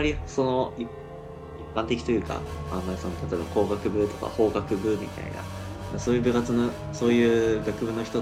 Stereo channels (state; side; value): identical; both; correlation 1.00